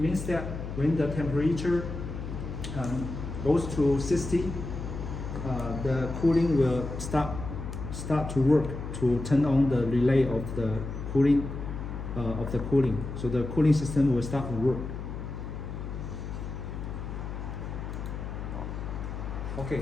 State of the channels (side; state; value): left; noise; hum, 7 dB below the sound